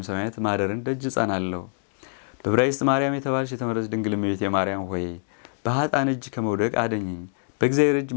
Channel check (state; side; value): silent; right; digital silence